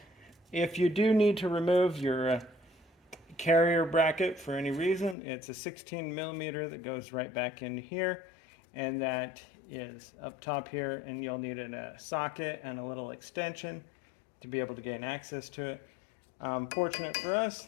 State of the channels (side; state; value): right; drops out; at 5.2 s